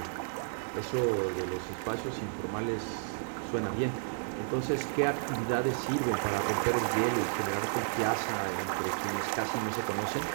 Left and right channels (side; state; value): left; silent; digital silence